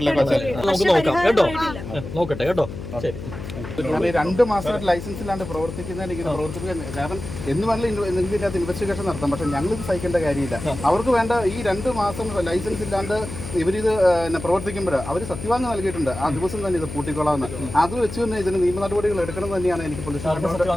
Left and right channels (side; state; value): left; noise; hum, 9 dB below the sound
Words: നമുക്ക് നോക്കാം കേട്ടോ. നോക്കട്ടെ കേട്ടോ. ശരി. 2 മാസമായിട്ട് ലൈസൻസ് ഇല്ലാണ്ട് പ്രവർത്തിക്കുന്നതിന് ഇങ്ങനെ പ്രവർത്തിക്കാൻ കാരണം എന്ന് വേണമെങ്കിൽ ഇതിൻ്റെ അകത്ത് ഇൻവെസ്റ്റിഗേഷൻ നടത്താം. പക്ഷേ ഞങ്ങളിത് സഹിക്കേണ്ട കാര്യമില്ല. അവർക്ക് വേണ്ട ഈ 2 മാസം ലൈസൻസ് ഇല്ലാണ്ട് ഇവരിത് പ്രവർത്തിക്കുമ്പോൾ അവർ സത്യവാങ്യം നൽകിയിട്ടുണ്ട്. ആ ദിവസം തന്നെ ഇത് പൂട്ടിക്കൊള്ളാമെന്ന്. അത് വെച്ച് തന്നെ ഇതിന് നിയമ നടപടികൾ എടുക്കണം തന്നെയാണ് എനിക്ക്